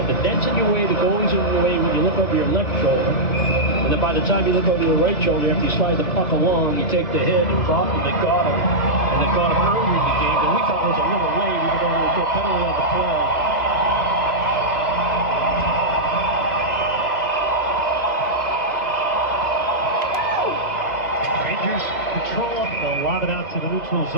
The net's in your way, the goalie's in your way when you look over your left shoulder. And then by the time you look over your right shoulder, after you slide the puck along, you take the hit, and it's off, and they got him. And they got him early in the game, and we thought it was a little late, even though there was no penalty on the play. Rangers control will lob it out to the neutral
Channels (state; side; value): late; right; 2.5 ms